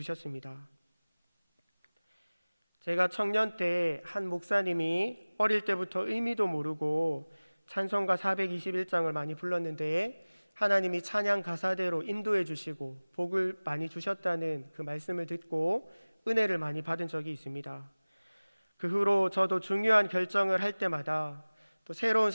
제가 청년 때 한 목사님이 어릴 때부터 의미도 모르고 찬송가 421장을 많이 불렀는데 하나님이 찬양 가사대로 인도해 주시고 복을 많이 주셨다는 그 말씀을 듣고 은혜를 많이 받은 적이 있습니다. 그 후로 저도 중요한 결정을 할 때마다 또 새로운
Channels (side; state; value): both; inverted; correlation -1.00